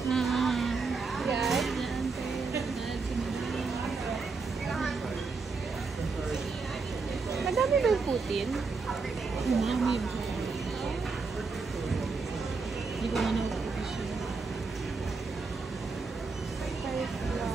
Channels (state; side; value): quieter; left; 4.5 dB